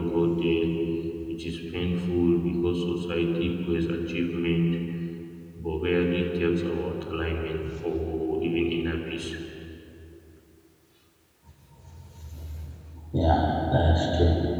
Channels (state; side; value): identical; both; correlation 1.00